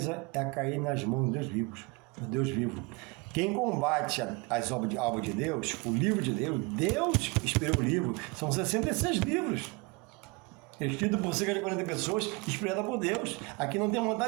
é cair nas mãos de Deus vivos, do Deus vivo. Quem combate as obras de Deus, o livro de Deus, Deus inspirou o livro, são 66 livros, escrito por cerca de 40 pessoas, inspirada por Deus. Aqui não tem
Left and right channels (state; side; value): quieter; left; 27.6 dB